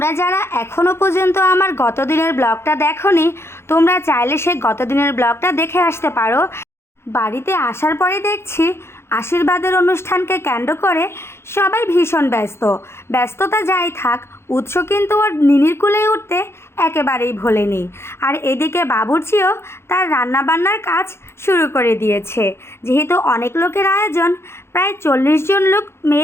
যারা এখনও পর্যন্ত আমার গতদিনের ব্লগটা দেখোনি, তোমরা চাইলে সেই গতদিনের ব্লগটা দেখে আসতে পারো। বাড়িতে আসার পরে দেখছি আশীর্বাদের অনুষ্ঠানকে কেন্দ্র করে সবাই ভীষণ ব্যস্ততা যাই থাক, উৎস কিন্তু ওর নিনির কুলে উঠতে একেবারেই ভোলেনি। আর এদিকে বাবুর্চিও তার রান্নাবান্নার কাজ শুরু করে দিয়েছে। যেহেতু অনেক লোকের আয়োজন, প্রায় 40 জন লোক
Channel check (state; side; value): late; right; 0.12 ms